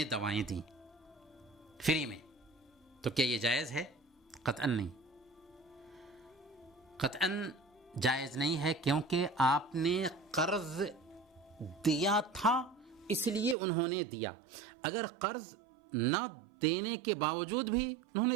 دوائیں دیں فری میں. تو کیا یہ جائز ہے؟ قطعاً نہیں، قطعاً جائز نہیں ہے، کیونکہ آپ نے قرض دیا تھا اس لیے انہوں نے دیا. اگر قرض نہ دینے کے باوجود بھی انہوں نے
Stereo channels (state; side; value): drops out; left; at 13.6 s